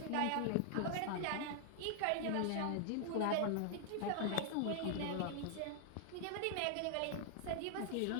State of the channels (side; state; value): both; different; correlation 0.00